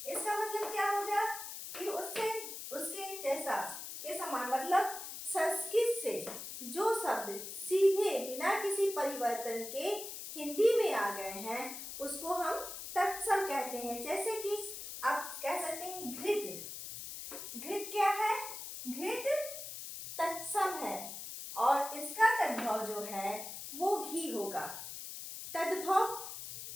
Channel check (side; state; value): left; noise; hiss, 9 dB below the sound